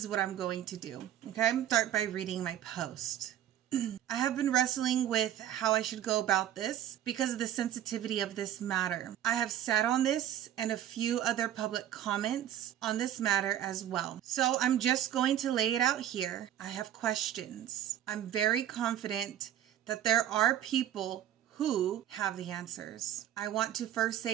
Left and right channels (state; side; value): quieter; left; 11.4 dB